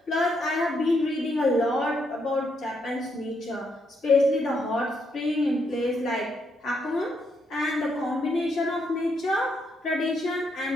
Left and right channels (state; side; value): normal; both; correlation 0.77